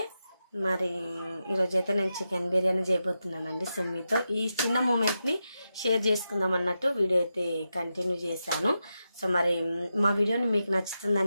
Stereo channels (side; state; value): both; inverted; correlation -0.89